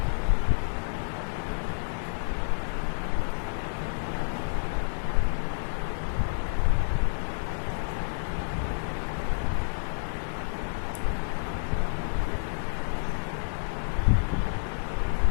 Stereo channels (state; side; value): silent; right; digital silence